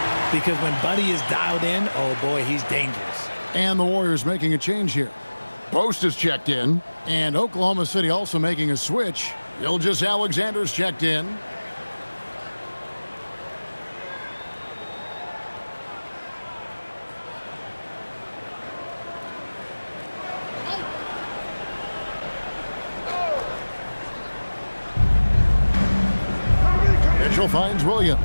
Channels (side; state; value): both; inverted; correlation -1.00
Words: Because when Buddy is dialed in, oh boy, he's dangerous. And the Warriors making a change here. Post is checked in, and Oklahoma City also making a switch. Gilgeous-Alexander's checked in. Mitchell finds Williams.